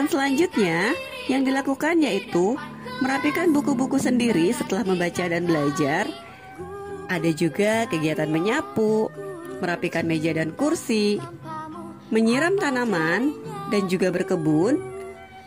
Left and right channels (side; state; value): both; identical; correlation 1.00